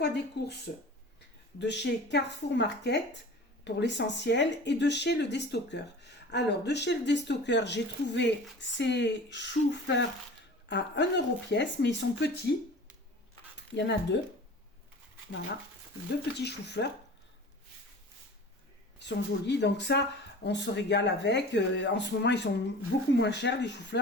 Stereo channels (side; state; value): both; normal; correlation 0.40